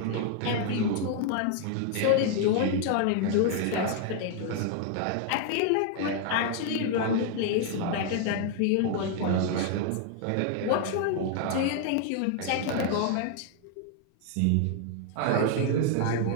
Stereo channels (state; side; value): different; both; correlation 0.00